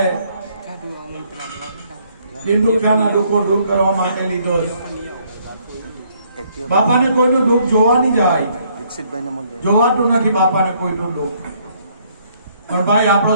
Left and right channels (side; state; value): both; inverted; correlation -0.67